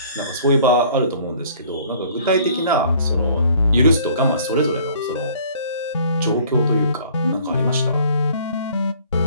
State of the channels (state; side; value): inverted; both; correlation -0.54